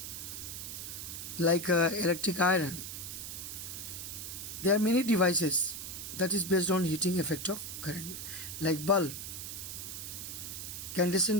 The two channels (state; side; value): noise; right; hiss, 7 dB below the sound